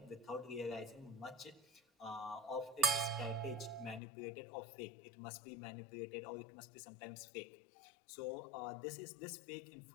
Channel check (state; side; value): drops out; right; at 4.0 s